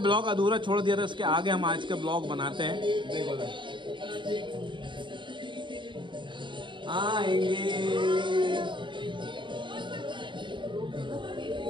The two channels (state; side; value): late; left; 0.23 ms